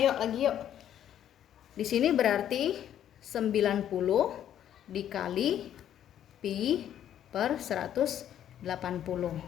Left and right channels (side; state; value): right; quieter; 10.6 dB